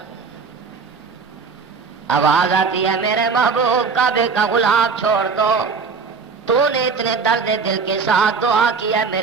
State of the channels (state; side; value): quieter; left; 5.1 dB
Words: آواز آتی ہے میرے محبوب کعبے کا غلاف چھوڑ دو، تو نے اتنے درد دل کے ساتھ دعا کیا،